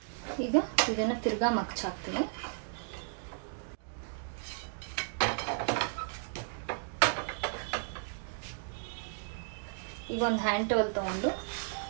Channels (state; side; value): silent; left; digital silence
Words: ಈಗ ಇದನ್ನ ತಿರ್ಗಾ ಮಗ್ಚ್ ಹಾಕ್ತೀನಿ. ಈಗ ಒಂದು ಹ್ಯಾಂಡ್ ಟವಲ್ ತಗೊಂಡು